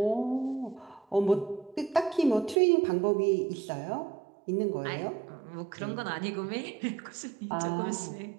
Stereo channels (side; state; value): left; drops out; at 2.6 s